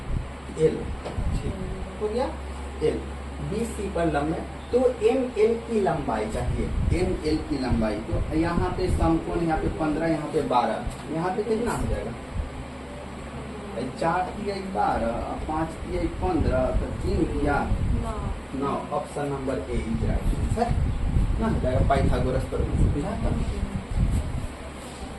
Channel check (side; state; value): both; identical; correlation 1.00